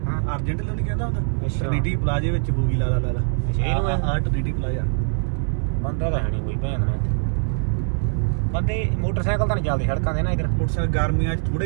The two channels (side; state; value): left; silent; digital silence